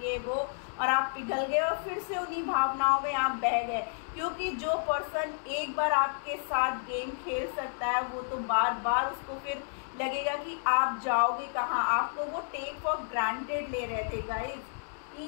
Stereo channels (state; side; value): silent; right; digital silence